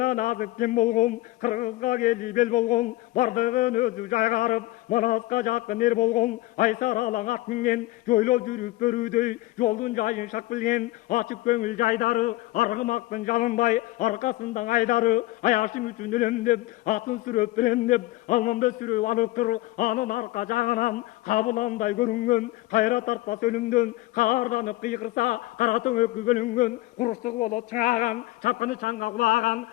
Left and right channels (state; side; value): quieter; right; 18.3 dB